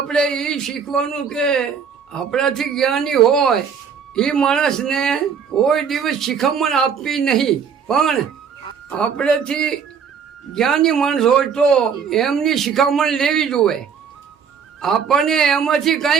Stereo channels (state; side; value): quieter; left; 6.7 dB